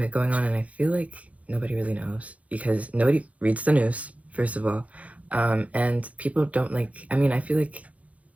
going on, and I feel like nobody really knows because nobody reads the news, first of all. And people don't I mean, I feel like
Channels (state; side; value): late; left; 0.067 ms